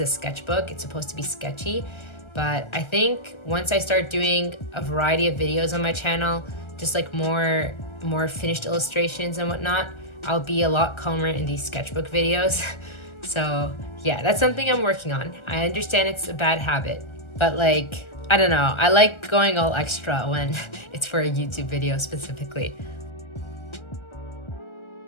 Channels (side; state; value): right; late; 1.3 ms